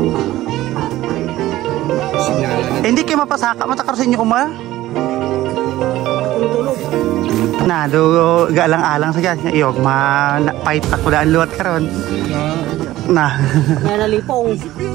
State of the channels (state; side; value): quieter; left; 15.6 dB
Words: Hindi kayo mapasaka. Matakar sa inyo uma. Na, do galang-alang sa kanya. Iyog, ma-fight na kudaan luwat karon. Na. May nalipong.